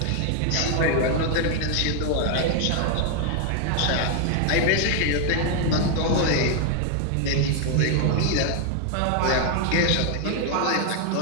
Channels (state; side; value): different; both; correlation 0.00